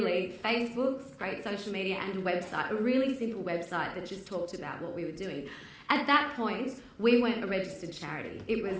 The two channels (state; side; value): identical; both; correlation 1.00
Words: Facebook, great social media, and a website, a really simple website that just talked about what we were doing. At that point, we weren't a registered charity. It was